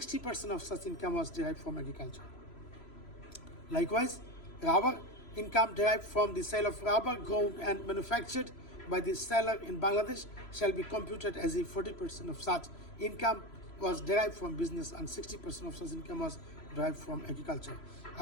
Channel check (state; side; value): late; right; 3.0 ms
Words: of such income was derived from agriculture. Likewise, rubber income derived from the sale of rubber grown and manufactured by the seller in Bangladesh shall be computed as if 40% of such income was derived from business and 60% of such income was derived from agriculture.